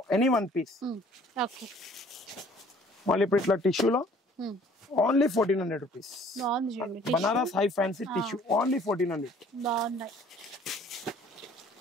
Any one piece. Okay. మళ్ళీ ఇప్పుడు ఇట్లా టిష్యూలో only 1400 rupees. Banaras high fancy tissue only 1400. బాగున్నాయి.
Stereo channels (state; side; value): normal; both; correlation 0.55